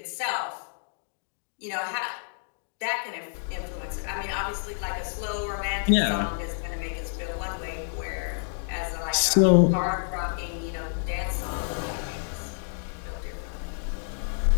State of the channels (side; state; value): right; silent; digital silence